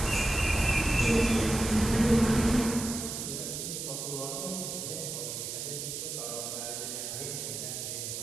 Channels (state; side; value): noise; right; hiss, 5 dB below the sound